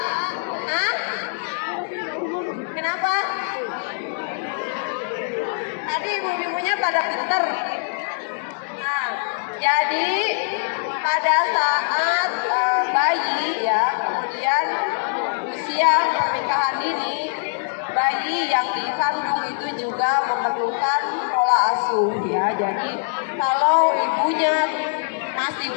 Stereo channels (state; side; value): silent; right; digital silence